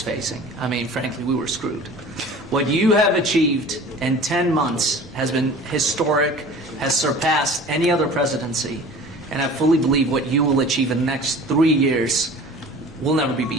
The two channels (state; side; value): normal; both; correlation 0.42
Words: I mean, frankly, we were screwed. What you have achieved in 10 months has been historic, has surpassed any other presidency, and I fully believe what you will achieve in the next 3 years will never be